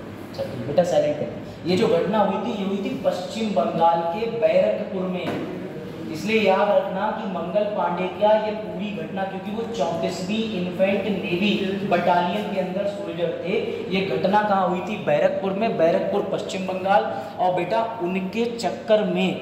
चलिए बेटा साइलेंट कर। ये जो घटना हुई थी, ये हुई थी पश्चिम बंगाल के बैरकपुर में। इसलिए याद रखना कि मंगल पांडे क्या ये पूरी घटना, क्योंकि वो 34वीं इन्फेंट नेवी बटालियन के अंदर सोल्जर थे। ये घटना कहाँ हुई थी? बैरकपुर में, बैरकपुर पश्चिम बंगाल। और बेटा उनके चक्कर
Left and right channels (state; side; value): identical; both; correlation 1.00